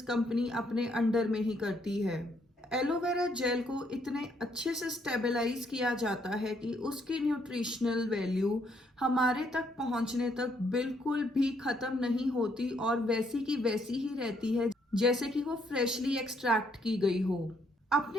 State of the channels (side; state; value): both; normal; correlation 0.71